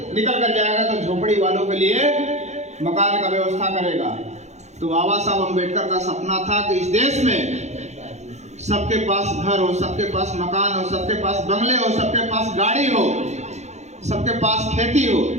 निकल कर जाएगा तो झोपड़ी वालों के लिए मकान का व्यवस्था करेगा। तो बाबा साहब अम्बेडकर का सपना था कि इस देश में सबके पास घर हो, सबके पास मकान हो, सबके पास बंगले हो, सबके पास गाड़ी हो, सबके पास खेती हो।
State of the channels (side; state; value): left; late; 0.33 ms